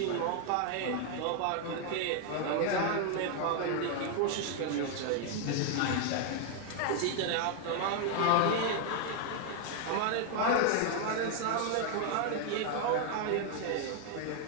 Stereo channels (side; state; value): both; different; correlation 0.00